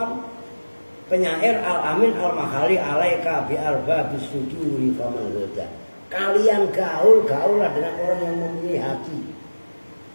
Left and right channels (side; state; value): both; inverted; correlation -1.00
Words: penyair al-amin al-makhali alaika bi arba bisuduri faman goda. Kalian gaul-gaulah dengan orang yang mempunyai hati.